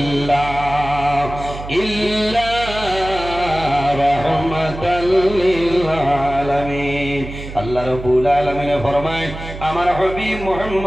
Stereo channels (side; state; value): right; noise; hum, 11 dB below the sound